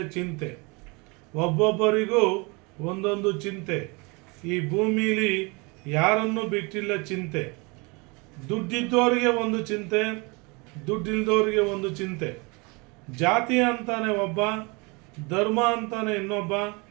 ಚಿಂತೆ. ಒಬ್ಬೊಬ್ಬರಿಗೂ ಒಂದೊಂದು ಚಿಂತೆ, ಈ ಭೂಮಿಲಿ ಯಾರನ್ನು ಬಿಟ್ಟಿಲ್ಲ ಚಿಂತೆ. ದುಡ್ಡಿದ್ದವರಿಗೆ ಒಂದು ಚಿಂತೆ, ದುಡ್ಡಿಲ್ದವರಿಗೆ ಒಂದು ಚಿಂತೆ. ಜಾತಿ ಅಂತಾನೆ ಒಬ್ಬ, ಧರ್ಮ ಅಂತಾನೆ ಇನ್ನೊಬ್ಬ.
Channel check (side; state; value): left; quieter; 28.5 dB